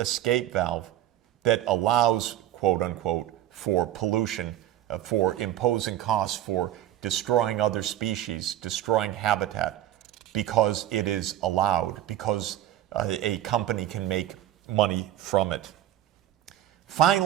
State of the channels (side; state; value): left; quieter; 12.7 dB